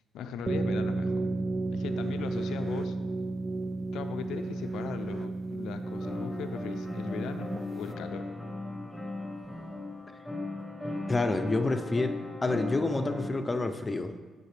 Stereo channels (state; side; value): normal; both; correlation 0.88